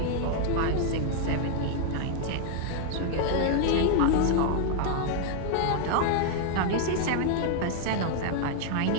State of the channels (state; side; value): different; both; correlation 0.00